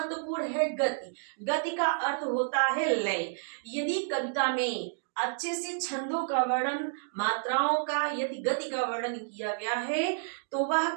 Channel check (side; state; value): left; silent; digital silence